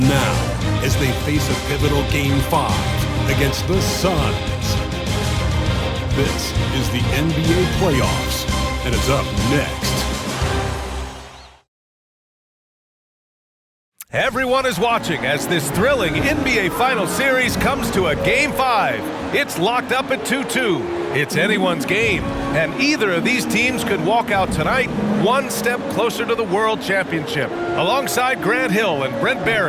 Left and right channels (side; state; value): both; identical; correlation 1.00